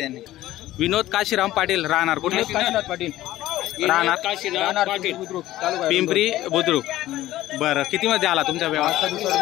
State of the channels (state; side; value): quieter; right; 15.0 dB